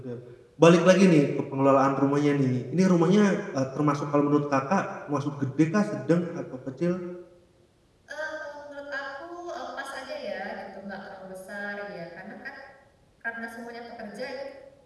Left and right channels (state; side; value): identical; both; correlation 1.00